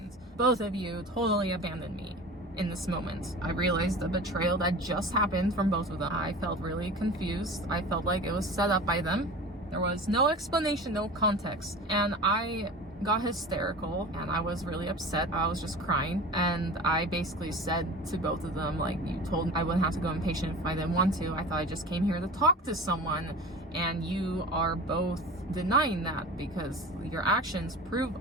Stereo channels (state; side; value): normal; both; correlation 0.35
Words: Both of you totally abandoned me in this moment. I realized the betrayal that just happened from both of them. I felt really confused. I felt like it was set up by them. There was no explanation, no context. And I got hysterical and I was really upset. I was just crying. And I basically said to both of them, like, you told me I wouldn't have to go inpatient if I didn't want to. I thought I just came here to talk to someone. And you are both denying that because your actions prove